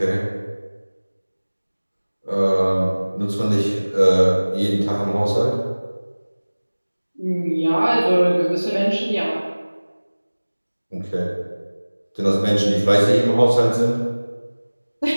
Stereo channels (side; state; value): both; inverted; correlation -1.00